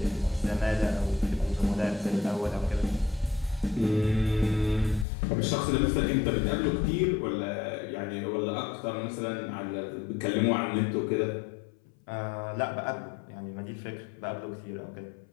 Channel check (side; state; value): right; drops out; at 5.1 s